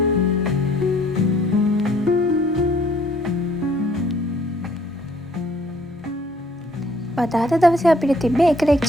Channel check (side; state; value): both; normal; correlation 0.61